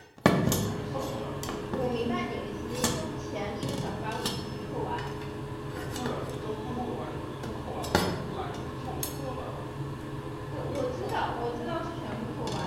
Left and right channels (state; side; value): identical; both; correlation 1.00